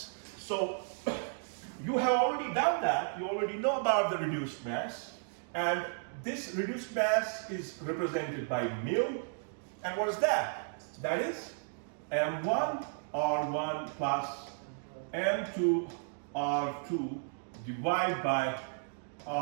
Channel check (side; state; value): left; silent; digital silence